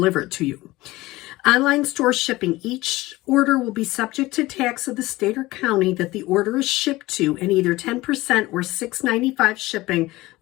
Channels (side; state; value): right; quieter; 19.1 dB